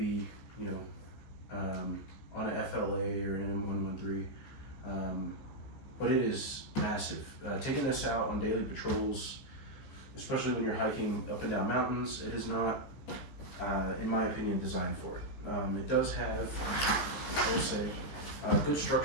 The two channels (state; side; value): late; right; 15 ms